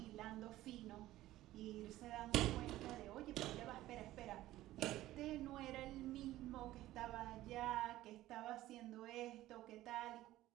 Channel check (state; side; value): quieter; left; 15.5 dB